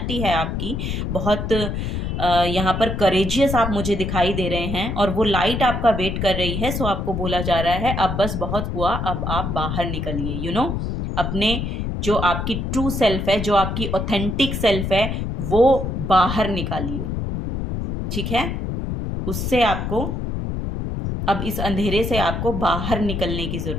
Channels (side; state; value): left; noise; rumble, 3 dB below the sound